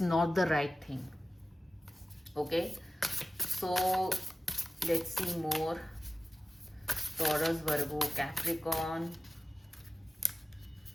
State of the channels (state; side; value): normal; both; correlation 0.94